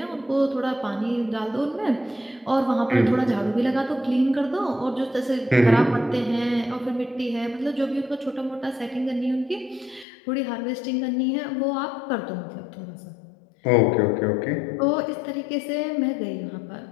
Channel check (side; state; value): right; drops out; at 10.1 s